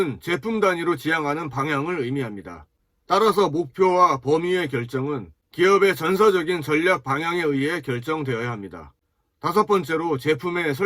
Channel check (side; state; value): both; identical; correlation 1.00